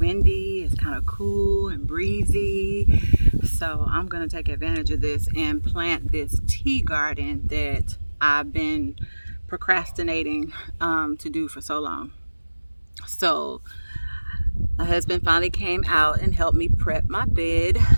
it's kind of cool and breezy. So I'm going to take advantage of this and plant this tea garden that I've been procrastinating to do for so long. So my husband finally came out and helped me prep my bed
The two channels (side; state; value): both; inverted; correlation -1.00